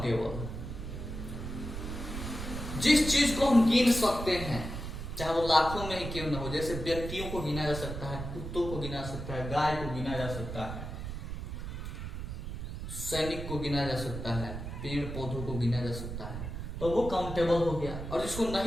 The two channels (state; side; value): noise; right; rumble, 7 dB below the sound